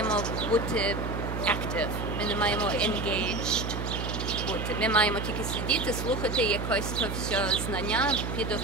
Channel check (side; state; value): right; noise; hum, 4 dB below the sound